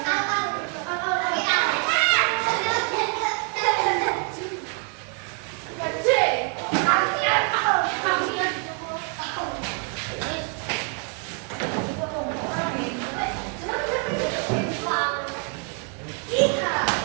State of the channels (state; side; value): quieter; left; 37.4 dB